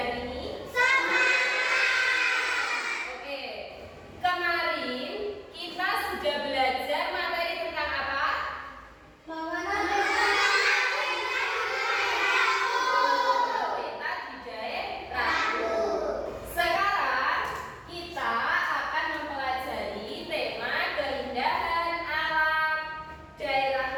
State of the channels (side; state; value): both; identical; correlation 1.00